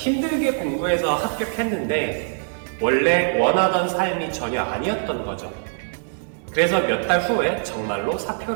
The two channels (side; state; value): left; silent; digital silence